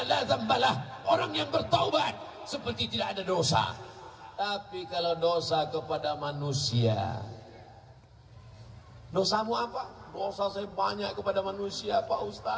la dzambalah. Orang yang bertaubat seperti tidak ada dosa. Tapi kalau dosa kepada manusia, dosamu apa? Dosa saya banyak kepada manusia, Pak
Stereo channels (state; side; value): identical; both; correlation 1.00